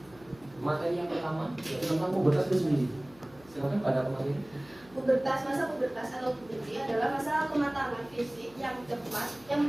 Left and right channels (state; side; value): noise; left; hum, 25 dB below the sound